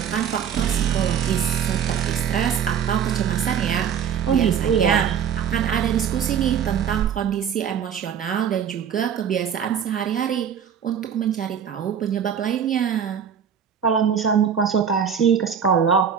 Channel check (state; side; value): quieter; left; 7.9 dB